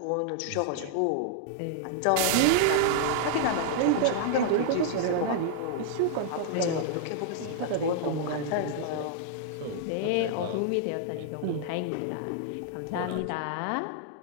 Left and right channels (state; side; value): different; both; correlation -0.01